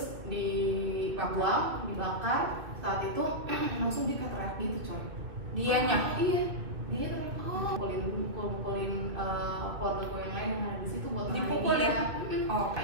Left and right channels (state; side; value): late; left; 2.3 ms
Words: dibuang, dibakar. Saat itu langsung dia kayak teriak gitu coy. Dianya? Iya, dia teriak, mukulin keluarga gue yang lain yang ada di situ buat dipukulin.